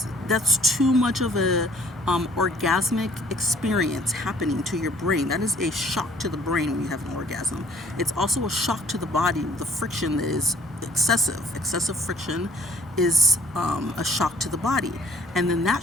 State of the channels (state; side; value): normal; both; correlation 0.58